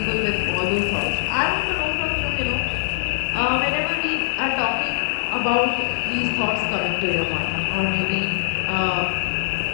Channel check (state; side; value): silent; right; digital silence